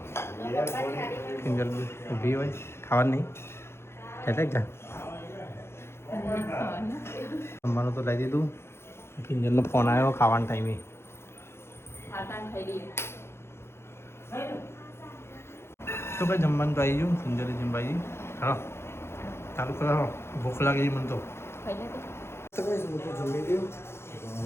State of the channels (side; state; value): right; late; 0.12 ms